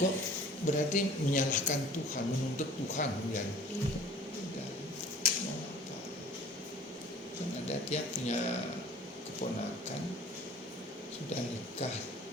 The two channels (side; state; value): both; normal; correlation 0.48